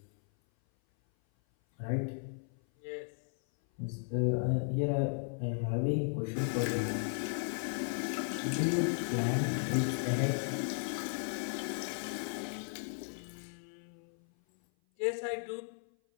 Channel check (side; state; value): right; silent; 54 dB below the other